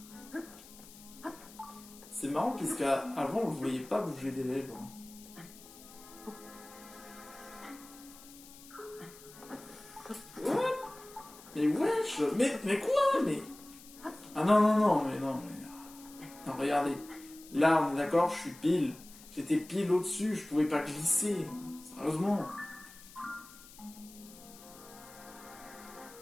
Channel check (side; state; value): left; noise; hiss, 19 dB below the sound